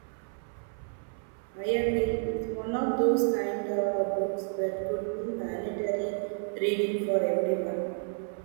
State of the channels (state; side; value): silent; left; 58 dB below the other